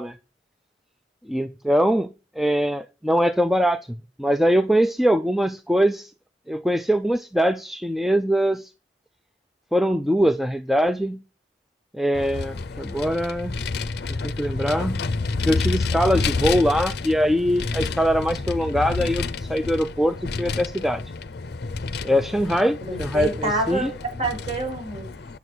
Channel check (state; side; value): normal; both; correlation 0.87